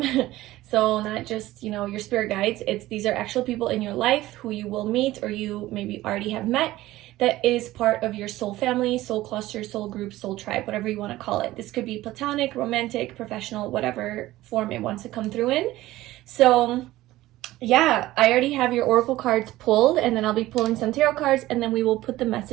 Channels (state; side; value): quieter; left; 16.5 dB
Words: So not just, you know, your spirit guides. These are actual people in your life who you will meet or you maybe already have met, that is part of your soul family, soul cluster, soul group, soul tribe, whatever you want to call it. This could be platonic, romantic, professional, whatever form it wants to come through in. So yeah, I already have your oracle cards pulled, and then I'll be pulling some tarot cards, and then we will put the